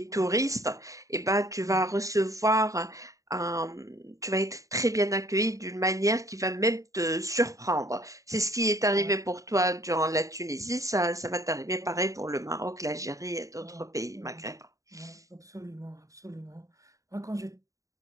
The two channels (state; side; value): late; left; 0.16 ms